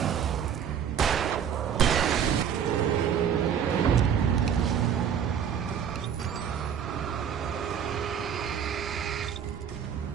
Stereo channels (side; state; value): left; quieter; 8.3 dB